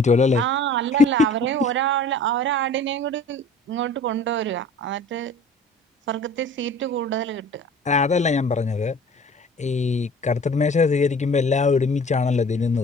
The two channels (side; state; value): both; normal; correlation 0.46